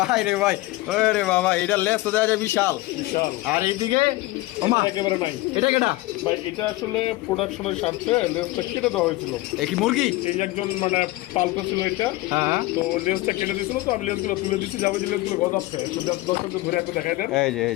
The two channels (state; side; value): quieter; right; 19.2 dB